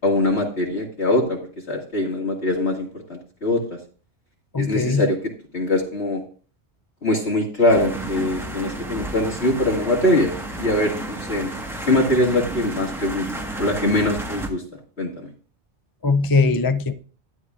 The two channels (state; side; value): normal; both; correlation 0.13